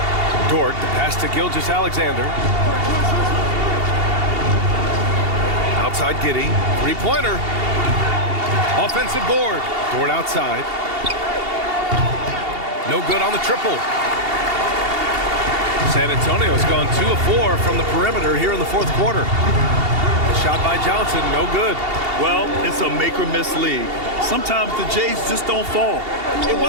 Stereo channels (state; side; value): late; left; 2.8 ms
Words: Dort, the pass to Gilgeous-Alexander. Outside Giddey. Three-pointer. Offensive board. Dort outside. No good on the triple. San Antonio's gone 2 of 4 from the perimeter here in the fourth quarter. The shot by Johnson, no good. Well, it's a make-or-miss league. Sometimes the Jays just don't fall. It